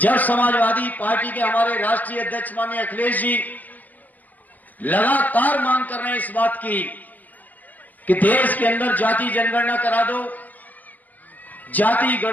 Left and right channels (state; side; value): late; right; 0.082 ms